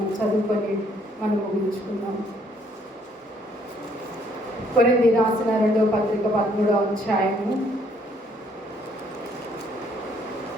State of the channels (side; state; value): both; normal; correlation 0.66